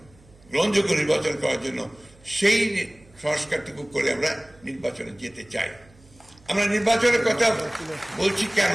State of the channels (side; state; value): right; noise; hum, 27 dB below the sound